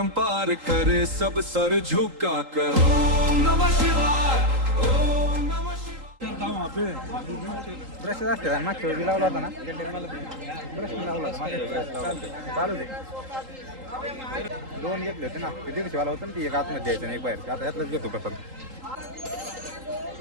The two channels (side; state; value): left; late; 3.8 ms